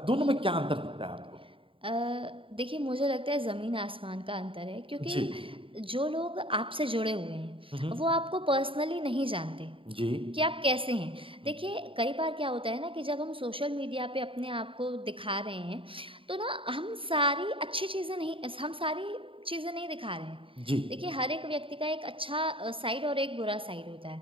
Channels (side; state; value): left; late; 0.26 ms